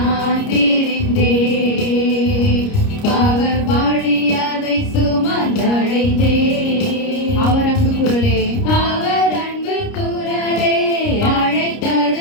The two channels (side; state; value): right; late; 30 ms